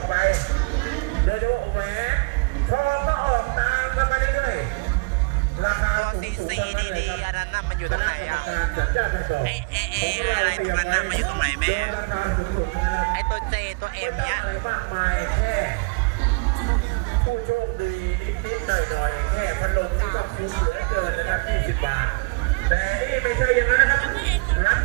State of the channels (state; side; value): quieter; left; 32.7 dB